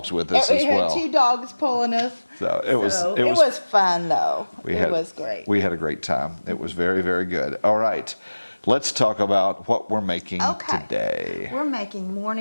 with us We as had well. 2 dogs pulling us. So it was Fun though. It was great. We had a great time. It was very, very good. All right, let's talk about what we're making today. We're making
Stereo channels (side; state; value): both; inverted; correlation -1.00